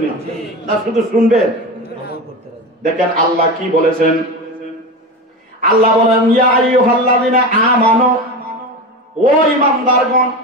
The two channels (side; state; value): both; normal; correlation 0.24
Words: না শুধু শুনবেন? দেখেন আল্লাহ কি বলেছেন। আল্লাহ বলেন, ইয়া আইয়ুহাল্লাযিনা আমানু, ও ঈমানদারগণ,